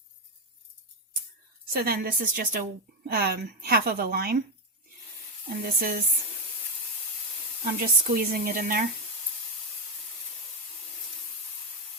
So then this is just a half of a lime. And this is, I'm just squeezing it in there.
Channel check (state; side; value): normal; both; correlation 0.06